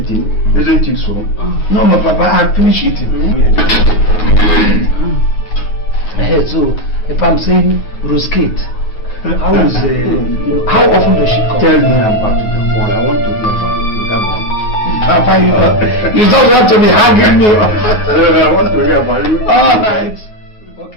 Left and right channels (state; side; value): late; right; 9.4 ms